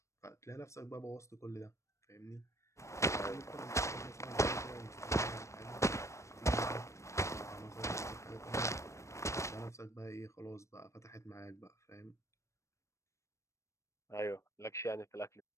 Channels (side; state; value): right; late; 0.14 ms